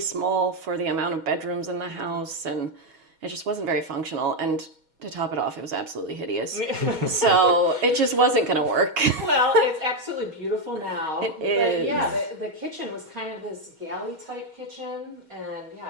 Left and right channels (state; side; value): late; left; 6.3 ms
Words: small for the amount of bedrooms in the house, and it just wasn't very functional. And to top it off, it was absolutely hideous. So it just wasn't going to work. Well, it's absolutely beautiful now. It is. But yeah, the kitchen was kind of this galley type kitchen, and yeah,